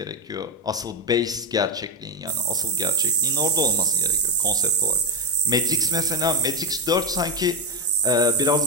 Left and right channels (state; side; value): normal; both; correlation 0.10